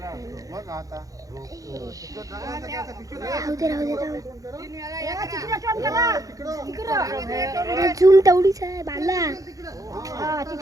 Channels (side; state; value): left; late; 0.17 ms